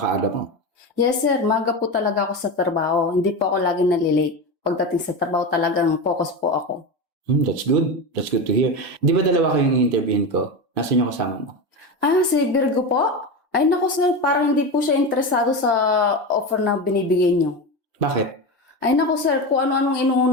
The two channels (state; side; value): normal; both; correlation 0.20